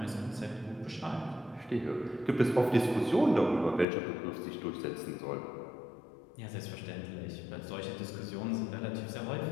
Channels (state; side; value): drops out; right; at 3.9 s